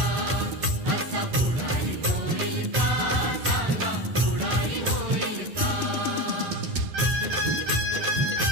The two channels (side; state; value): left; late; 11 ms